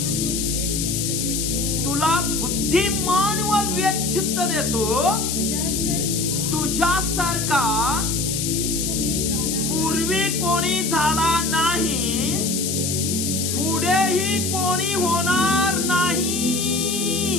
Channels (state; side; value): noise; left; hiss, 1 dB below the sound